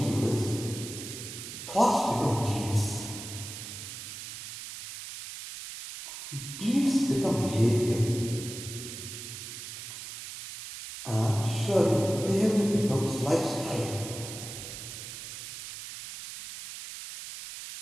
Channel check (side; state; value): right; noise; hiss, 10 dB below the sound